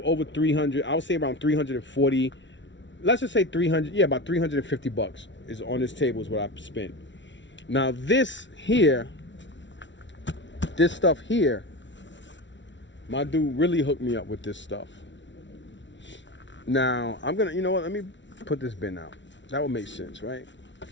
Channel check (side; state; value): right; late; 0.54 ms